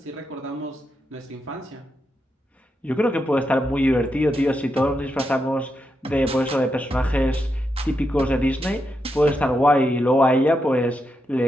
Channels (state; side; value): normal; both; correlation 0.84